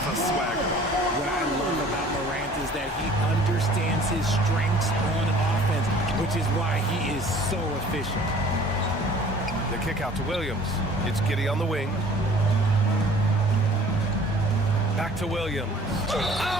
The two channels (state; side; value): normal; both; correlation 0.51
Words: a swagger. What I love about Morant is that he understands his strengths on offense, which is why he is so efficient. The kick out to Williams. It's Giddey on the wing. Back to Williams.